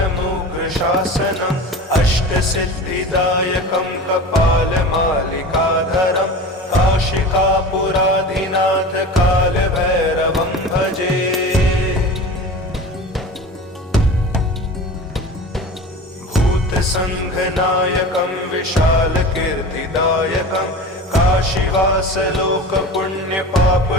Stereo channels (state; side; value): normal; both; correlation 0.34